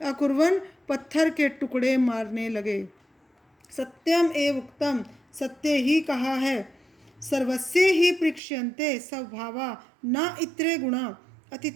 अकुर्वन् पत्थर के टुकड़े मारने लगे। सत्यम एव उक्तम, सत्य ही कहा है। सर्वस्य ही पृक्ष्यन्ते स्वभावा न इत्रे गुणा,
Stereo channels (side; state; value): left; drops out; at 8.4 s